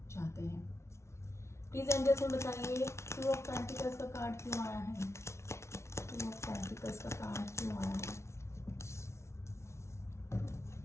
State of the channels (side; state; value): right; late; 0.13 ms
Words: चाहते हैं। प्लीज एंजल्स में बताइए 2 ऑफ पेंटिकल्स का कार्ड क्यों आया है? 2 ऑफ पेंटिकल्स का कार्ड क्यों आया है?